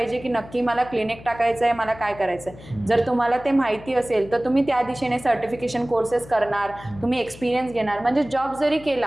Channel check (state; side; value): noise; left; hum, 18 dB below the sound